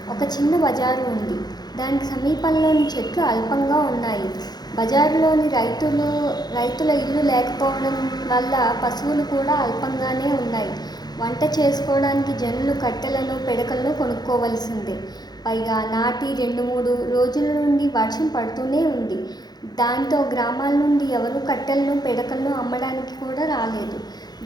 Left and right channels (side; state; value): right; late; 0.19 ms